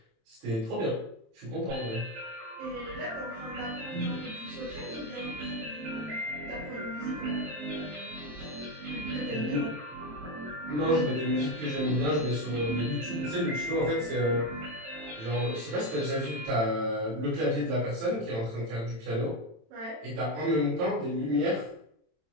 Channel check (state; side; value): late; left; 27 ms